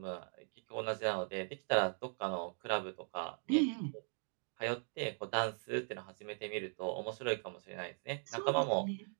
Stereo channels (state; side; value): silent; left; 51 dB below the other